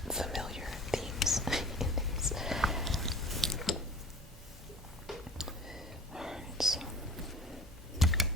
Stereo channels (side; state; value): both; normal; correlation 0.44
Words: familiar themes in these. Alright, so